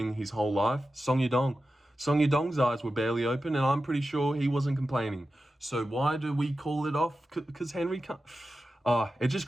his whole life? Song Yadong. Song Yadong's eyes were barely open, and I'm pretty sure he wasn't complaining. So why do we call it off? Because Henry can't... it just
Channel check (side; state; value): both; normal; correlation 0.92